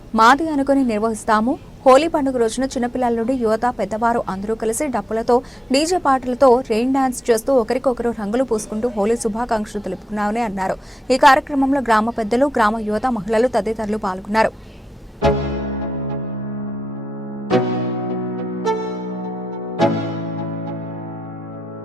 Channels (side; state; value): both; normal; correlation 0.90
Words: మాది అనుకుని నిర్వహిస్తాము. హోలీ పండుగ రోజున చిన్నపిల్లల నుండి యువత, పెద్దవారు అందరూ కలిసి డప్పులతో, డీజే పాటలతో రెయిన్ డాన్స్ చేస్తూ ఒకరికొకరు రంగులు పూసుకుంటూ హోలీ శుభాకాంక్షలు తెలుపుకున్నామని అన్నారు. ఈ కార్యక్రమంలో గ్రామ పెద్దలు, గ్రామ యువత, మహిళలు తదితరులు పాల్గొన్నారు.